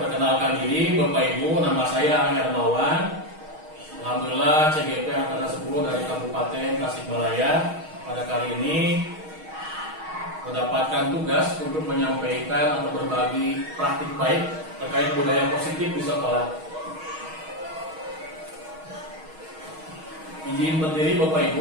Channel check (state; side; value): late; left; 6.4 ms